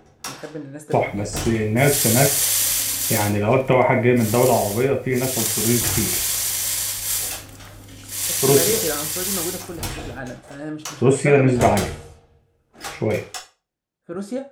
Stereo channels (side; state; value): both; identical; correlation 1.00